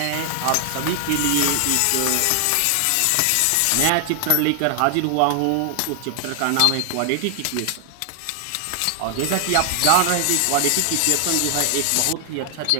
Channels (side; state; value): both; different; correlation 0.00